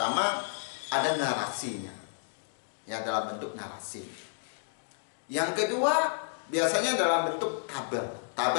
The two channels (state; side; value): silent; right; digital silence